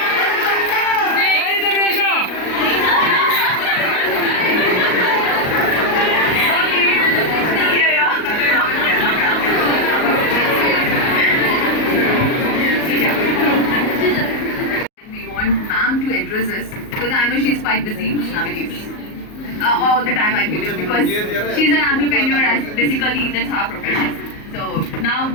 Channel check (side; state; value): right; late; 38 ms